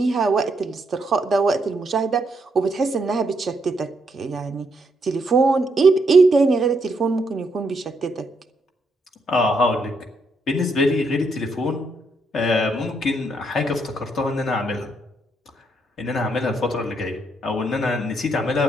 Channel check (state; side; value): normal; both; correlation 0.76